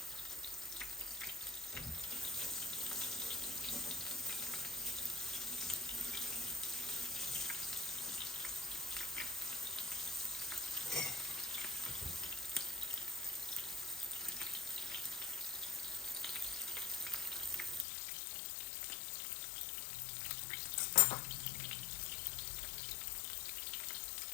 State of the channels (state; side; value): drops out; right; at 17.9 s